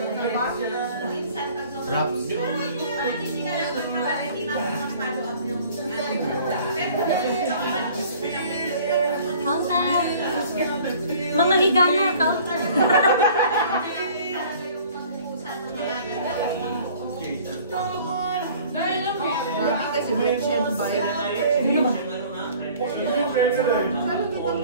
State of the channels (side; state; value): both; inverted; correlation -0.50